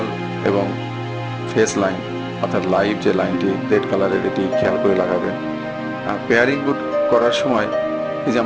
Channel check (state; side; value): identical; both; correlation 1.00